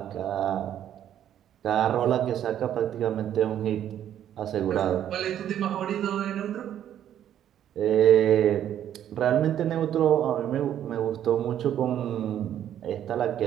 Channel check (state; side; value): quieter; left; 10.6 dB